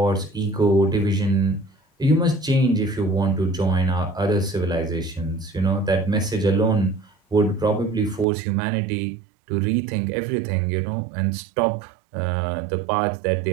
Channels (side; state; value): left; drops out; at 8.2 s